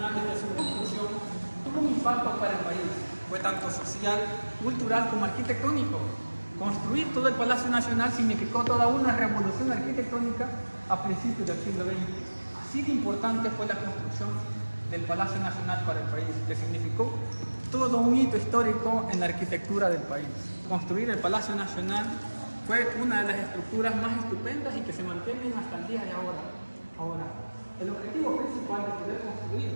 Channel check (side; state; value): both; inverted; correlation -1.00